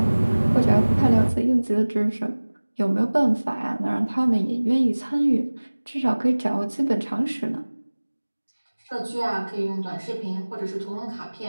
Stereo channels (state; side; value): inverted; both; correlation -1.00